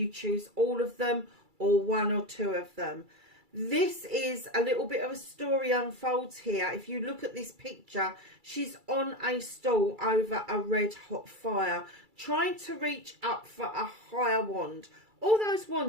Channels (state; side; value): late; left; 2.3 ms